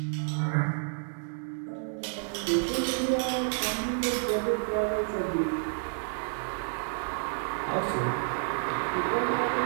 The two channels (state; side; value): silent; left; digital silence